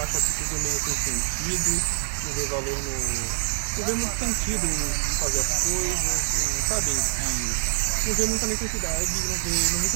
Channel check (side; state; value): left; silent; digital silence